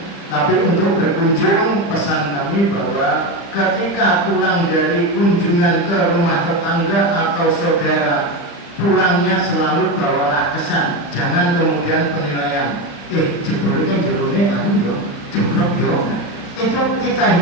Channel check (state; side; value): late; right; 35 ms